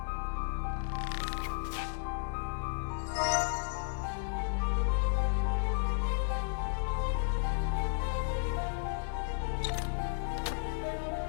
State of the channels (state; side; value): silent; right; digital silence